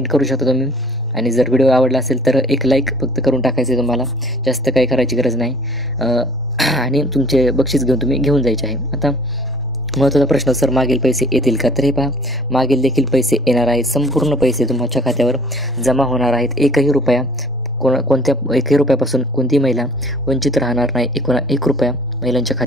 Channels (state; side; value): normal; both; correlation 0.51